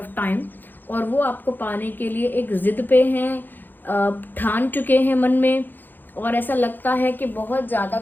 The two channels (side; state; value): right; late; 0.090 ms